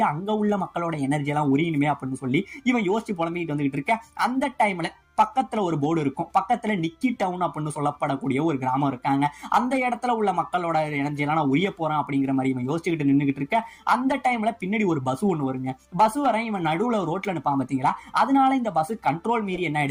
அங்க உள்ள மக்களோட எனர்ஜி எல்லாம் உரியணுமே அப்படின்னு சொல்லி இவன் யோசிச்சு புலம்பிட்டு வந்துகிட்டு இருக்க. அந்த டைம்ல பக்கத்துல ஒரு போர்டு இருக்கும். பக்கத்துல நிக்கி டவுன் அப்படின்னு சொல்லப்படக்கூடிய ஒரு கிராமம் இருக்காங்க. அந்த இடத்துல உள்ள மக்களோட எனர்ஜி எல்லாம் நான் உரிய போறேன் அப்படிங்கிற மாதிரி இவன் யோசிச்சுக்கிட்டு நின்றுகிட்டு இருக்க. அந்த டைம்ல பின்னாடி ஒரு பஸ் ஒண்ணு வருங்க. பஸ் வர இவன் நடுவுல ரோட்ல நிப்பான் பாத்தீங்களா, அதனால இந்த பஸ் கண்ட்ரோல் மீறி என்ன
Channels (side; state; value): both; identical; correlation 1.00